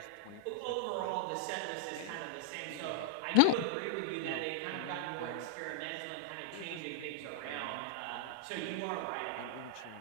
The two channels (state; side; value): different; both; correlation -0.01